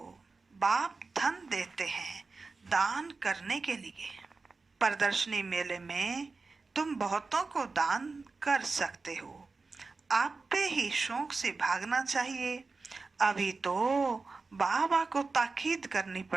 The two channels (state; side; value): quieter; left; 4.0 dB